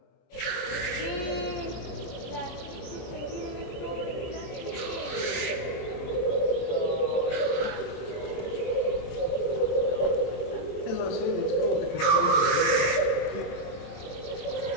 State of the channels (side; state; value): right; late; 23 ms